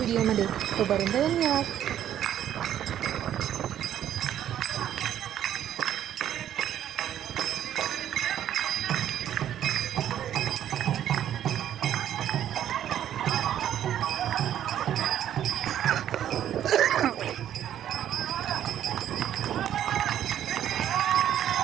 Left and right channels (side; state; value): left; quieter; 10.8 dB